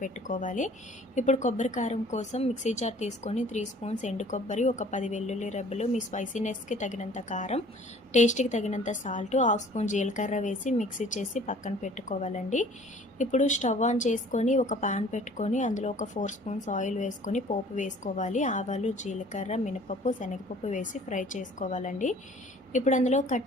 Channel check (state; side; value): normal; both; correlation 0.51